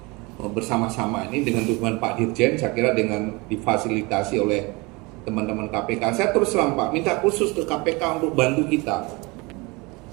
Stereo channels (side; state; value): left; quieter; 25.7 dB